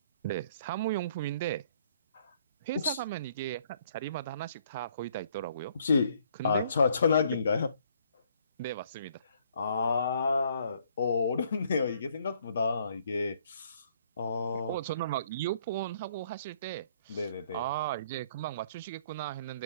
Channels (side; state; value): both; inverted; correlation -0.64